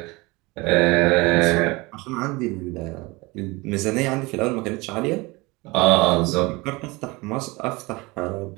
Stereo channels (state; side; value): quieter; left; 23.9 dB